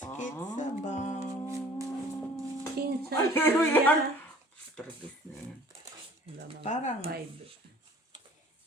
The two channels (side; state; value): both; normal; correlation 0.50